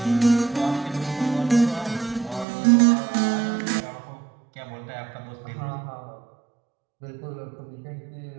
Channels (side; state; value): left; drops out; at 2.5 s